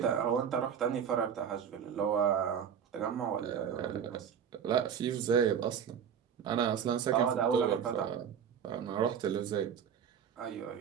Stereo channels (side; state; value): left; quieter; 8.0 dB